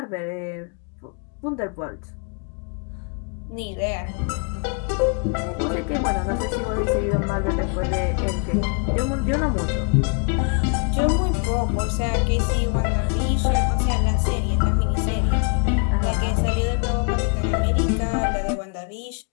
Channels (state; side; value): quieter; right; 38.5 dB